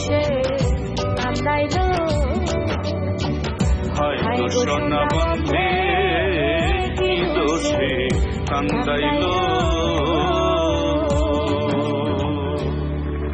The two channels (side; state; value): both; identical; correlation 1.00